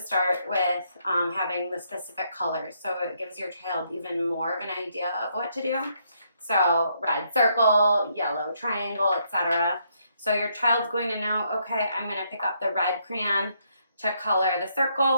with having the specific colors. So it gives your child even more of an idea of what to do. So red circle, yellow triangle, etc. So your child's going to know, okay, I'm going to pick up the red crayon to color the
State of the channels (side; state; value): both; inverted; correlation -0.74